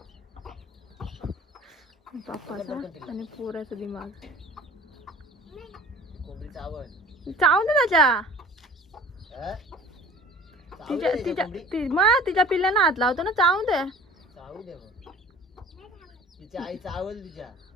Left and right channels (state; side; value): normal; both; correlation 0.45